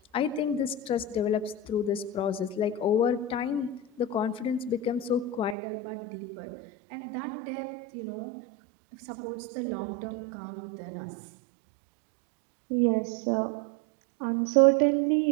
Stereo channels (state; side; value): drops out; left; at 5.6 s